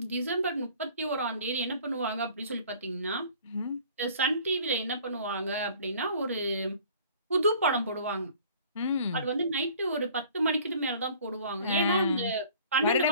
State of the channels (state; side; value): inverted; both; correlation -0.50